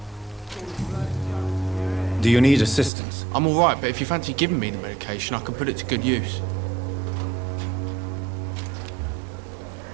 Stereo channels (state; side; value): drops out; left; at 2.9 s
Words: Do you need assistance? I'm all right, but if you fancy giving me the medication, I can put it to good use.